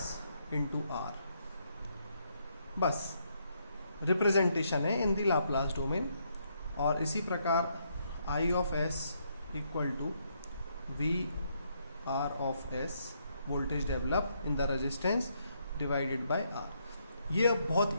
into R. बस रिप्रेजेंटेशन है इन द लाप्लास डोमेन. और इसी प्रकार I of S equal to V R of S voltage develop in the resistance divided by R. ये अब बहुत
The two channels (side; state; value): both; inverted; correlation -0.75